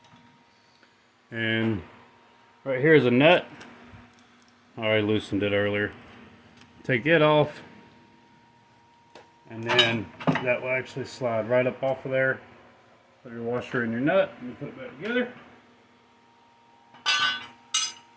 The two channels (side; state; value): both; identical; correlation 1.00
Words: And right here is a nut. I already loosened it earlier. Take it off, and then that will actually slide right up off of there. Put your washer in your nut and put it back together.